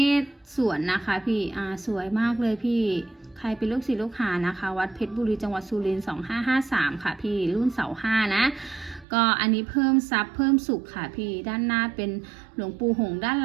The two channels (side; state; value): left; drops out; at 9.1 s